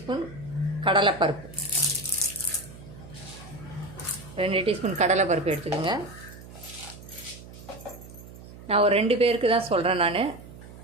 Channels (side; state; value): right; noise; hum, 17 dB below the sound